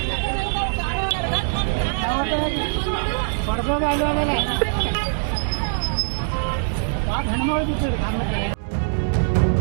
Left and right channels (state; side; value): silent; left; digital silence